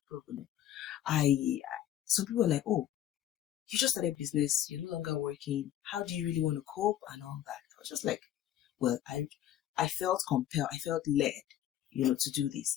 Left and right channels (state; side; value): quieter; right; 11.6 dB